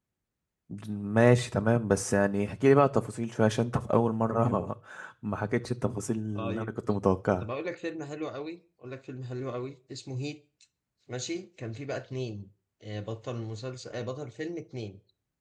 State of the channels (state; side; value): identical; both; correlation 1.00